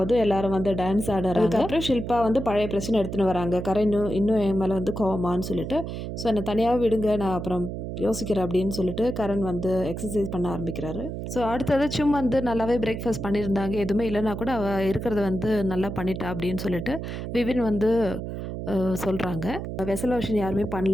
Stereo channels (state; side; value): noise; right; hum, 6 dB below the sound